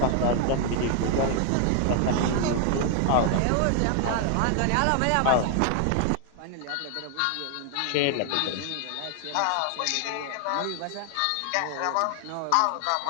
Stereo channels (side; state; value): both; different; correlation 0.00